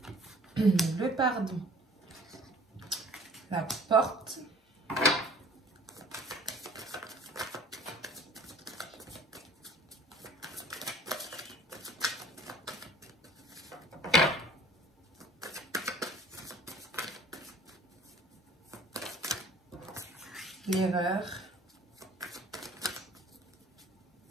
le pardon, la porte, l'erreur,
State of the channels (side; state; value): both; normal; correlation 0.50